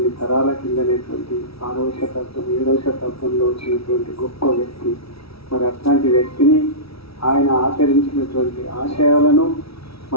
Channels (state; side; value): late; right; 0.76 ms